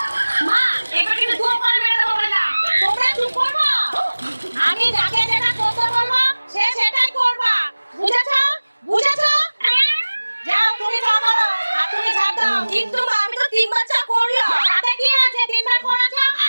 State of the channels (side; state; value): both; inverted; correlation -1.00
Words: মা, এবার কিন্তু দুটো করে মেরে দেবো বললাম। তোমরা চুপ করবা। আমি যাকে যেটা করতে বলবো সে সেটাই করবা। বুঝেছো? বুঝেছো? যাও তুমি চা করো আর তুমি ঝাড় দাও। কিন্তু মা, আমি তো 3বার চা করলাম। তাতে কি আছে? 3বার করেছো,